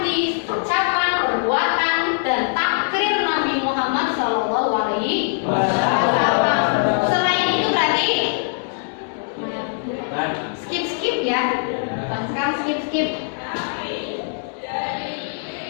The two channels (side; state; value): right; silent; digital silence